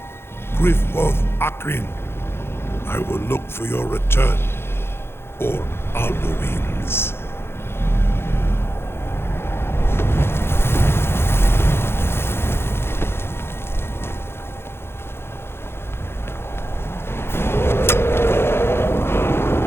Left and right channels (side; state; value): right; late; 0.12 ms